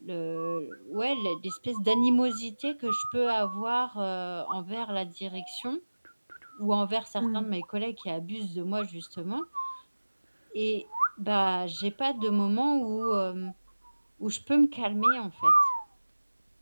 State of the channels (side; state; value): both; inverted; correlation -1.00